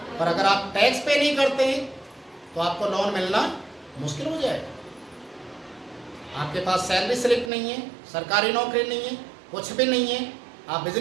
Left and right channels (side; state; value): left; drops out; at 7.5 s